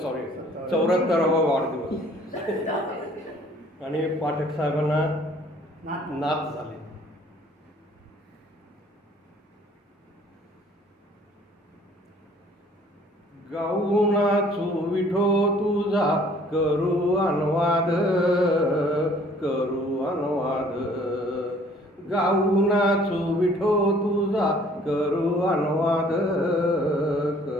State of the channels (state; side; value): normal; both; correlation 0.56